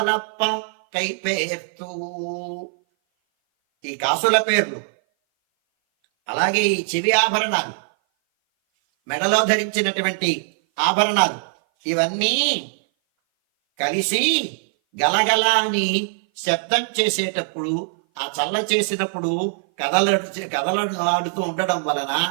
కైపేర్తూ, ఈ కాసుల పేర్లు అలాగే ఈ చెవి ఆభరణాలు, మెడలో ధరించినటువంటి ఆభరణాలు ఇవన్నీ కలిసి గలగల అని శబ్దం చేసేటప్పుడు, ఆ చల్ల చేసినప్పుడు కదలాడుతూ ఉండడం వలన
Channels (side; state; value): left; silent; 57 dB below the other